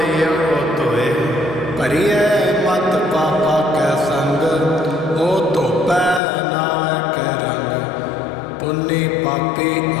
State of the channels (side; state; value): right; drops out; at 6.2 s